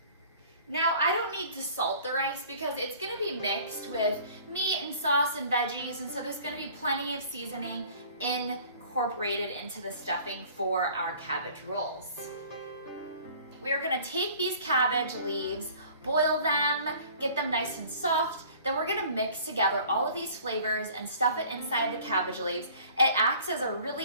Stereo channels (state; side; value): inverted; both; correlation -0.50